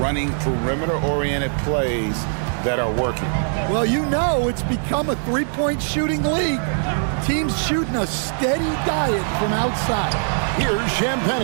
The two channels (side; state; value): left; silent; digital silence